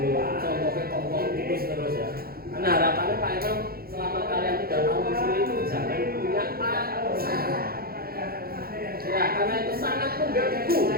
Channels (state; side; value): late; left; 0.44 ms